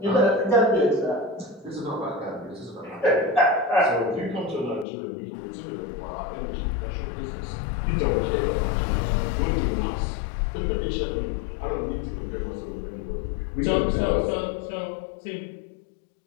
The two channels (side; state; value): right; drops out; at 4.9 s